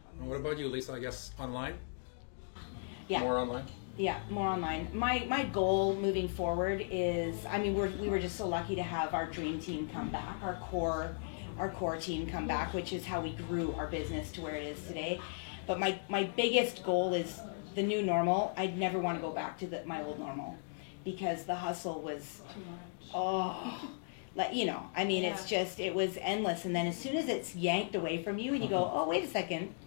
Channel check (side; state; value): right; silent; digital silence